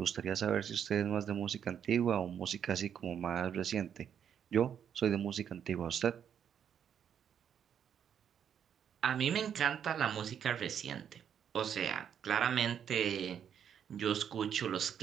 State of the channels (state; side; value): quieter; left; 8.6 dB